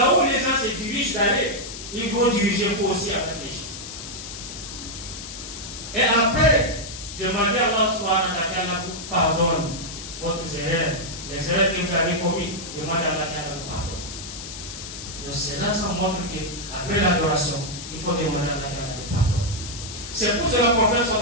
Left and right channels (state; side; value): noise; left; hiss, 10 dB below the sound